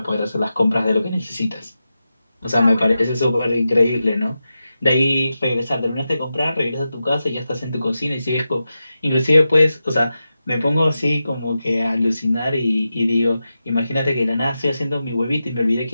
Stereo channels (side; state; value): both; inverted; correlation -0.91